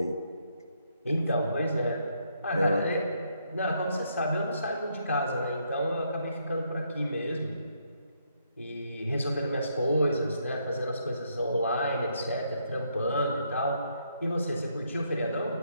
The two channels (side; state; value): both; inverted; correlation -0.74